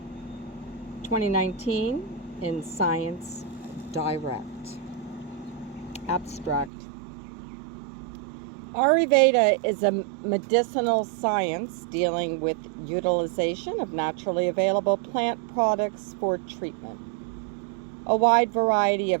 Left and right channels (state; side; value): drops out; left; at 6.7 s